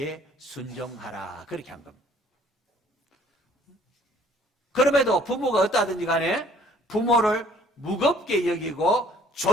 순종하라 그렇게 한 겁니다. 그럼에도 부모가 어떠하든지 간에 부모를 무겁게 여기고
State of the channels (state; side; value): normal; both; correlation 0.58